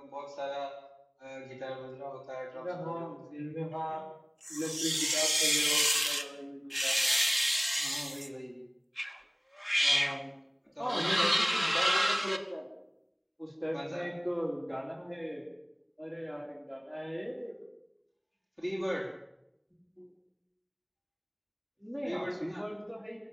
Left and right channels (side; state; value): both; identical; correlation 1.00